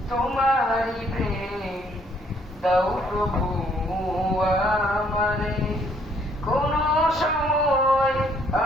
তোমারি প্রেম দাও প্রভু আমারে। কোন সময়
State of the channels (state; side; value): normal; both; correlation 0.65